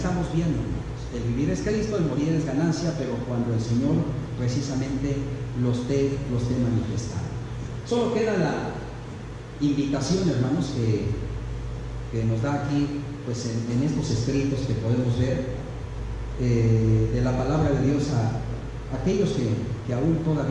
viendo, hermanos, el vivir es Cristo, el morir es ganancia, pero cuando el Señor precisamente los esté manifestando. Solo queda la invitación, hermanos, que nos da aquí pues en estos escritos que podemos ver de la palabra de Dios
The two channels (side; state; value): both; identical; correlation 1.00